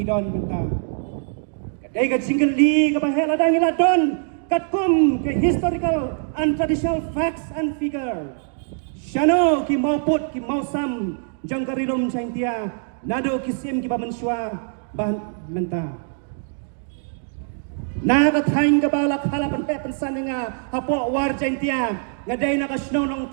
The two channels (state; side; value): silent; left; digital silence